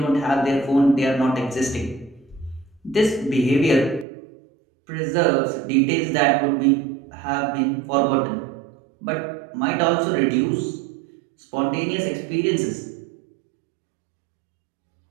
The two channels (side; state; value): left; drops out; at 4.0 s